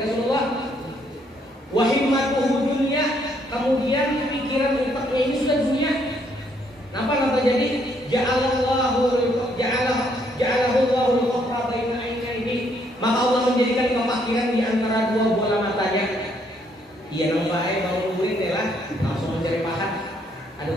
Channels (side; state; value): both; normal; correlation 0.70